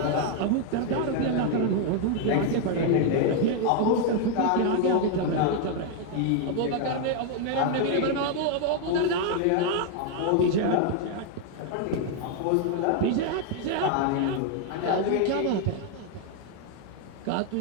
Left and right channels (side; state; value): both; different; correlation 0.01